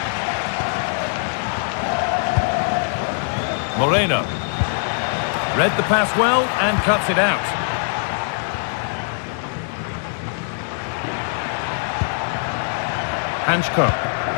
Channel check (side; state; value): right; silent; digital silence